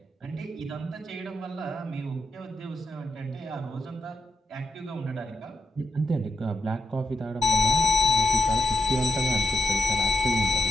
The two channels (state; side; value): normal; both; correlation 0.84